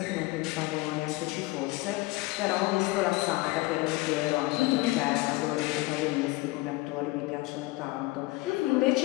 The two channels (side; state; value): right; quieter; 21.2 dB